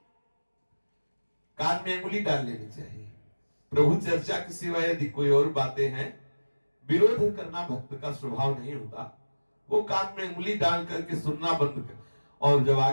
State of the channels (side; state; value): both; inverted; correlation -1.00